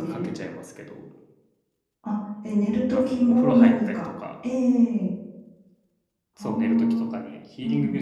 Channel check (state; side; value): identical; both; correlation 1.00